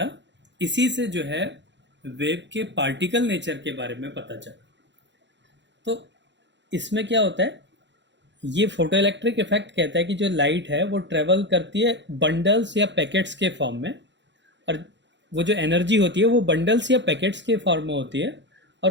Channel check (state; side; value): late; left; 0.52 ms